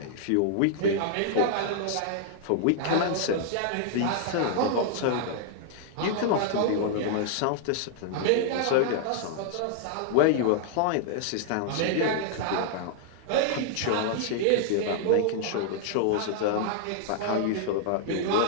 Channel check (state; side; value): different; both; correlation -0.01